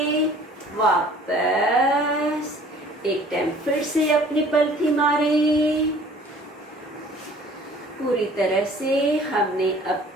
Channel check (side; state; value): both; normal; correlation 0.51